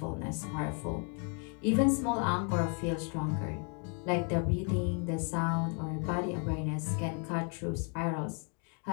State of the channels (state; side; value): quieter; right; 39.5 dB